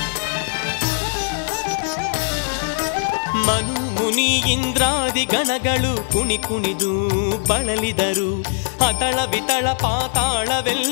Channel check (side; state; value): right; silent; 65 dB below the other